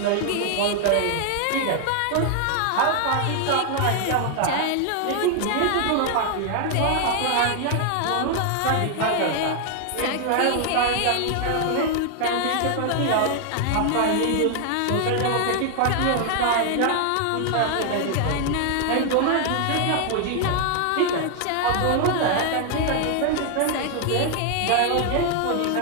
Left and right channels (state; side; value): different; both; correlation 0.00